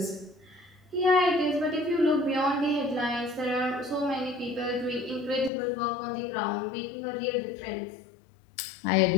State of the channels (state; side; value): drops out; right; at 5.5 s